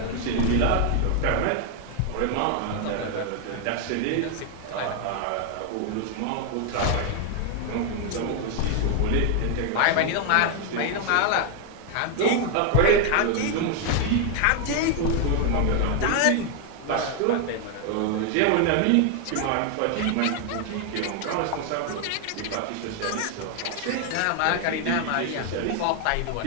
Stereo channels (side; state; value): both; different; correlation 0.00